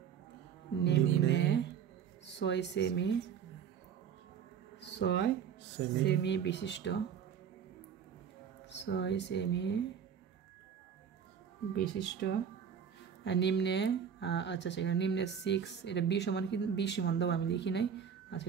নিম্নে 6 সেমি বিশিষ্ট 6 সেমি বিশিষ্ট নিম্নে, আচ্ছা সেখানে নিম্নে 6, এটা বি সমান কি? বি সমান দাও, আমি লিখি নাই। আচ্ছা,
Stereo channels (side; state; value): left; quieter; 7.8 dB